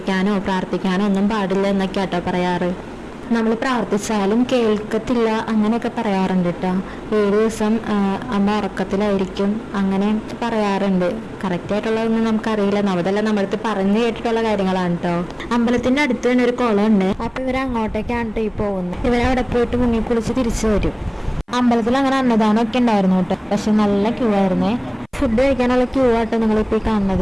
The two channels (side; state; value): both; identical; correlation 1.00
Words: പ്രാർത്ഥിക്കാനോ ഒന്നും പാടില്ല എന്നൊക്കെ കേട്ടോ പറയാറ്. നമ്മൾ പ്രാർത്ഥിച്ചാലും കേൾക്കത്തില്ല അങ്ങനെയൊക്കെ പറയാറുണ്ട് കേട്ടോ. 7 ദിവസം അമ്മ ഉറക്കത്തിലായിരിക്കും അങ്ങനെ പറയാറുണ്ട്. കറക്റ്റ് ആയിട്ടുള്ളതൊന്നും നമുക്കറിയില്ല, നമ്മളെല്ലാം നമ്മളടുത്ത് പറഞ്ഞു കേട്ടിട്ടുള്ള കാര്യങ്ങളാണ് കേട്ടോ. അമ്പലത്തിന്റെ അടുത്ത് തന്നെ ഒരു കുളം ഉണ്ട്. അപ്പൊ ഇവര് അങ്ങോട്ടേക്കാണ് കേട്ടോ ഈ പോകുന്നത്. ഇവരവിടെ പോയിട്ട് മുങ്ങി കുളിച്ച് തിരിച്ചു വരും. അമ്പലത്തിൽ അങ്ങനെ അന്നദാനം ഒക്കെ ഉണ്ടായിരുന്നു കേട്ടോ. പക്ഷെ നല്ല ക്യൂ ആയിരുന്നേ. ഫുഡ് കഴിക്കാനുള്ള ക്യൂ ആട്ടോ നിങ്ങളിപ്പോ കാണുന്നത്.